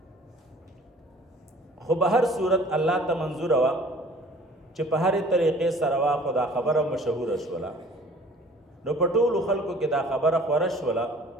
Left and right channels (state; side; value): normal; both; correlation 0.50